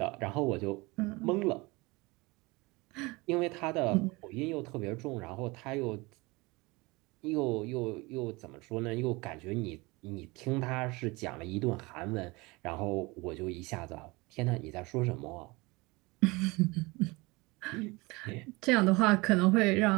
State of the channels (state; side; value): quieter; left; 24.2 dB